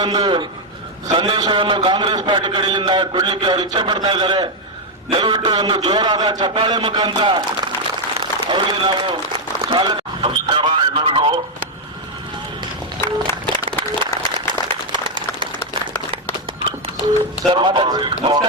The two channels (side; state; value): both; normal; correlation 0.01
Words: ಒಂದು ಸಂದೇಶವನ್ನು ಕಾಂಗ್ರೆಸ್ ಪಾರ್ಟಿ ಕಡೆಯಿಂದ ಕೊಡ್ಲಿಕ್ಕೆ ಅವರು ಇಚ್ಛೆ ಪಡ್ತಾ ಇದ್ದಾರೆ. ದಯವಿಟ್ಟು ಒಂದು ಜೋರಾದ ಚಪ್ಪಾಳೆ ಮುಖಾಂತರ ಅವರಿಗೆ ನಾವು ಸ್ವಾಗತ. ನಮಸ್ಕಾರ ಎಲ್ಲರಿಗೂ.